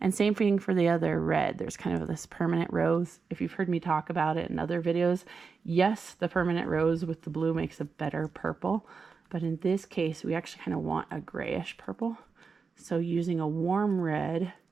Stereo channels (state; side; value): quieter; left; 5.1 dB